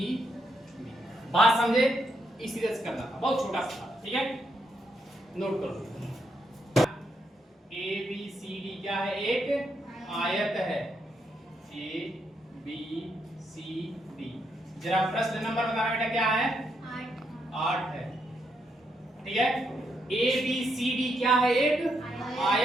बात समझे? इसी तरह से करना था, बहुत छोटा सा, ठीक है, नोट करो। ABCD क्या है? एक आयत है। ABCD। जरा प्रश्न नंबर बताना बेटा, क्या है? 8 है। ठीक है। ABCD क्या है? एक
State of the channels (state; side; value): normal; both; correlation 0.79